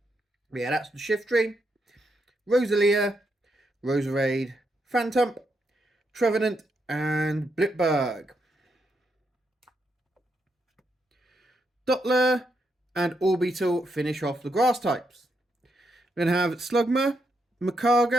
But yeah, that's the Shiftry, Rosalia, Roserade, Phantump, Trevenant and Blipberg. Dottler and Orbital finish off the grass types. We're going to have Slugma,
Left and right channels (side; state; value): both; normal; correlation 0.81